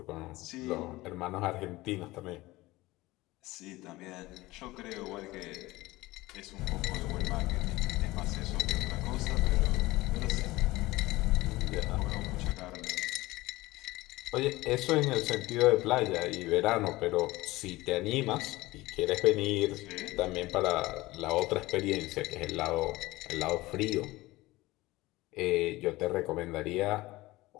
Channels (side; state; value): right; quieter; 19.4 dB